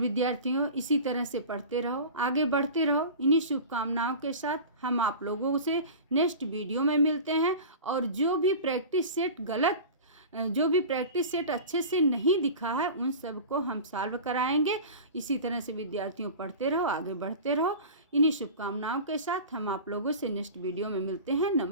इसी तरह से पढ़ते रहो, आगे बढ़ते रहो। इन्हीं शुभकामनाओं के साथ हम आप लोगों से नेक्स्ट वीडियो में मिलते हैं। और जो भी प्रैक्टिस सेट अच्छे से नहीं दिखा है उन सब को हम सॉल्व कराएंगे। इसी तरह से विद्यार्थियों पढ़ते रहो, आगे बढ़ते रहो। इन्हीं शुभकामनाओं के साथ हम आप लोगों से नेक्स्ट वीडियो में मिलते हैं।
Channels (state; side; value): inverted; both; correlation -0.34